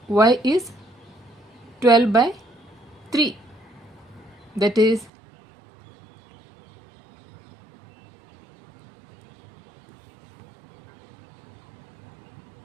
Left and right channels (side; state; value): left; drops out; at 5.1 s